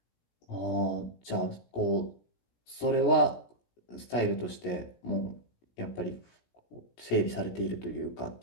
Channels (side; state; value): right; late; 17 ms